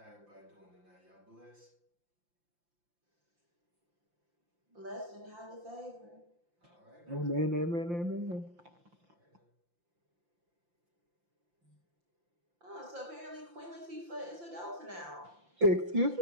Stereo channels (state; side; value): late; left; 5.8 ms